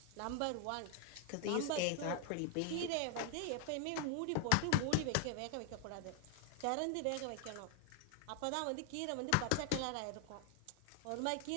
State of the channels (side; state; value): both; different; correlation 0.00